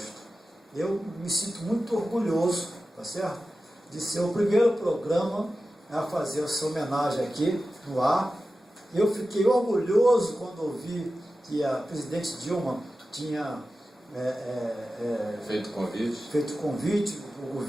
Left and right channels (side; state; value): both; normal; correlation 0.93